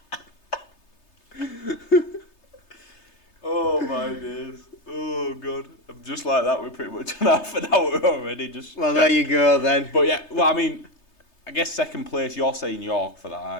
Oh, my days. Oh, God. I'm just like that. We're pretty much on half an hour already. Well, there you go, then. But, yeah, well, I mean, I guess second place, you're saying York for that,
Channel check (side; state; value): right; late; 3.3 ms